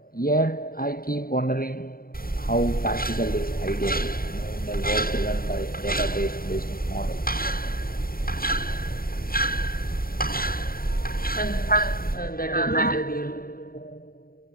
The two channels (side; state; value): right; late; 0.43 ms